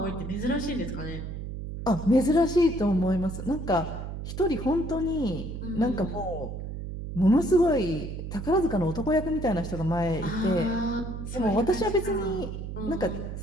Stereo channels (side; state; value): right; noise; hum, 7 dB below the sound